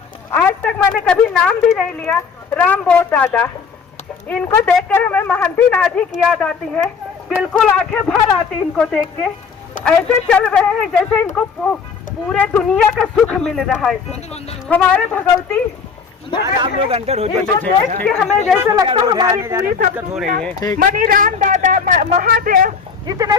आज तक मैंने कभी नाम भी नहीं लिया। राम बोस दादा, इनको देखकर हमें महंती नाथ जी की याद आती है। बिल्कुल आंखें भर आती इनको देख के। ऐसे चल रहे हैं जैसे इनको पूरे दुनिया का सुख मिल रहा है। हमारे भगवती आप लोग अंदर हो जाते, हमें जैसे लगता है हमारी पूरी सब हो रही है। मनीराम दादा, महादेव, जितने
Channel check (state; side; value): quieter; right; 5.8 dB